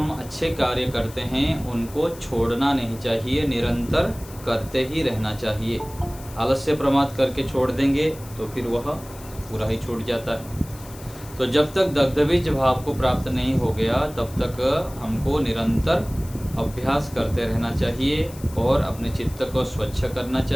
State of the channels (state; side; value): noise; left; hiss, 19 dB below the sound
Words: अच्छे कार्य करते हैं उनको छोड़ना नहीं चाहिए, निरंतर करते ही रहना चाहिए। आलस्य प्रमाद करके छोड़ देंगे तो फिर वह पूरा ही छूट जाता है। तो जब तक दग्धबीज भाव को प्राप्त नहीं हो गया, तब तक हमको निरंतर अभ्यास करते रहना चाहिए और अपने चित्त को स्वच्छ करना